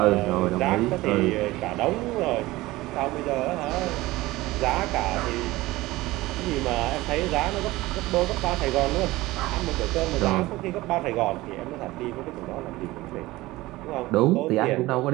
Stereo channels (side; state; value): left; quieter; 18.8 dB